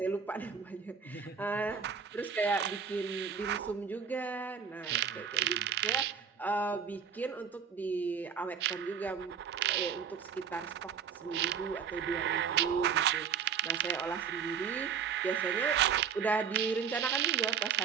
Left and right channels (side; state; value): left; quieter; 6.9 dB